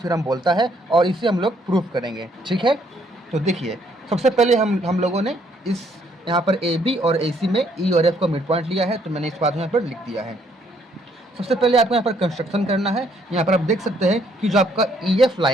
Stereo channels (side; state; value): both; normal; correlation 0.68